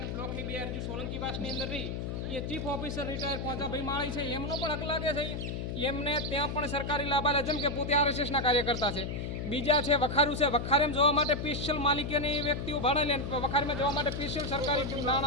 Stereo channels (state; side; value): noise; left; hum, 4 dB below the sound